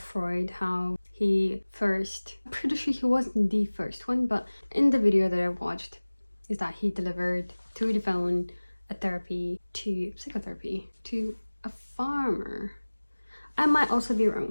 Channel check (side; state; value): both; inverted; correlation -1.00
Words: how I'm pretty sure he wasn't the first one, but in the video that I watched is that he delivered through the phone a psychotherapy to a farmer. I might also be